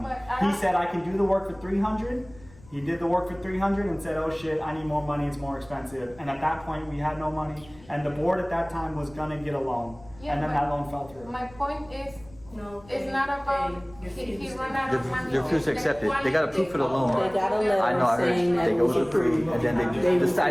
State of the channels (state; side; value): noise; left; rumble, 23 dB below the sound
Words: He said I can do the work for $300. He did the work for $300 and said, "Oh shit, I need more money. It's more expensive." And at that point, we had no money, and the board at that time was gonna get a loan, and then that loan fell through. My point is, it's not about he ran out of money. They refused to accept it. They got approved for the loan. They got a I know, I letter heard saying that they it go was approved. and then they